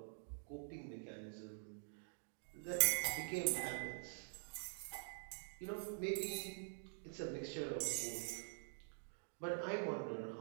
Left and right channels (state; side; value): silent; left; digital silence